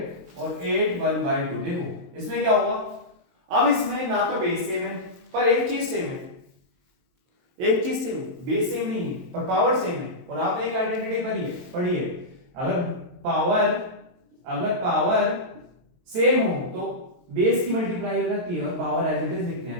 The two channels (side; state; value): left; late; 23 ms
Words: और 8 1/2। देखो इसमें क्या होगा, अब इसमें ना तो बेस सेम है पर एक चीज सेम है, एक चीज सेम है, बेस सेम नहीं है पर पावर सेम है। और आपने एक आइडेंटिटी पढ़ी है, अगर पावर सेम हो तो बेस की मल्टीप्लाई हो जाती है और पावर एज इट इज लिखते